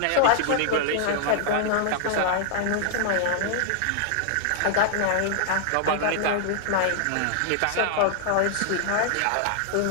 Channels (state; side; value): different; both; correlation -0.01